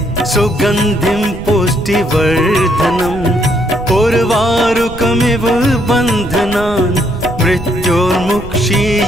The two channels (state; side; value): noise; right; rumble, 12 dB below the sound